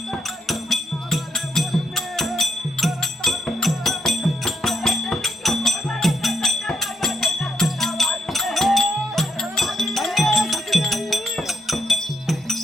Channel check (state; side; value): normal; both; correlation 0.78